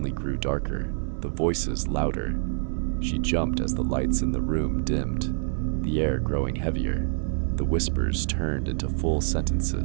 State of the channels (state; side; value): silent; left; digital silence